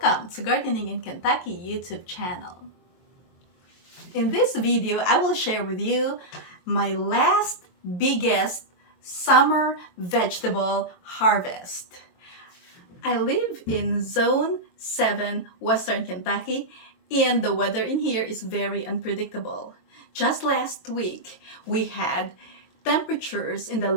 to Gardening in Kentucky YouTube channel. In this video, I will share with you my last biggest summer vegetable harvest. I live in Zone 7, Western Kentucky, and the weather in here is very unpredictable. Just last week, we had temperatures in the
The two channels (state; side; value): late; right; 22 ms